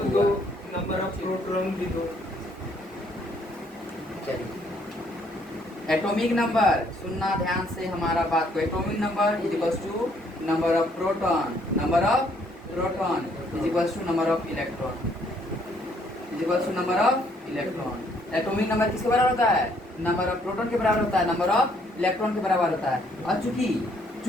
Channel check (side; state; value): both; normal; correlation 0.66